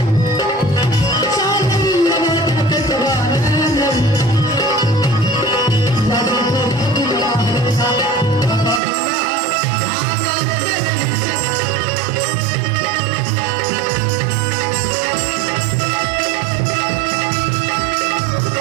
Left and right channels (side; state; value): left; drops out; at 8.8 s